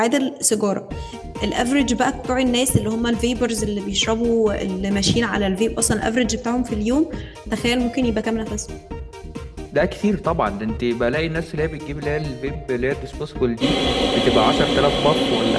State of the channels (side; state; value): both; identical; correlation 1.00